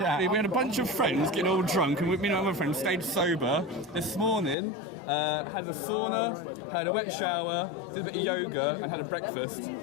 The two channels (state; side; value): drops out; right; at 4.5 s